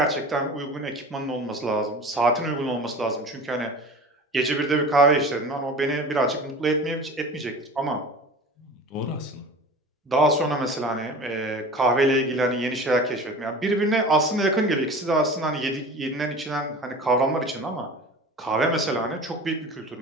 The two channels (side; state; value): both; normal; correlation 0.37